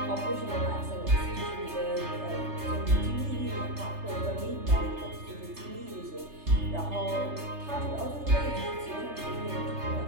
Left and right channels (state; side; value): late; left; 3.3 ms